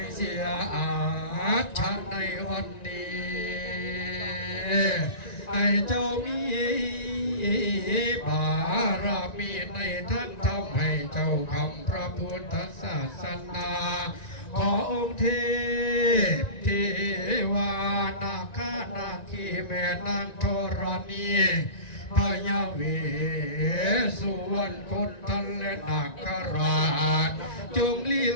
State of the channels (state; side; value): late; right; 1.9 ms